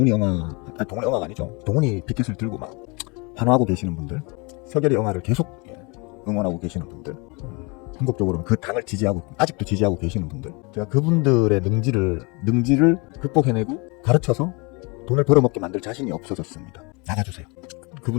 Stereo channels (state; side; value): quieter; right; 29.5 dB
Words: 아니죠. 동훈이 피켓을 들고 막 환호하고 계시는 분들, 서결이 영화를 계속 응원하고 계시는 분들, 궁극적으로는 그 당을 아직도 지지하고 계시는 분들, 제가 그분들의 능지를 극복해내고 가르쳐서 돈을 벌어먹게 만들 자신이 없어졌습니다. 나가주세요.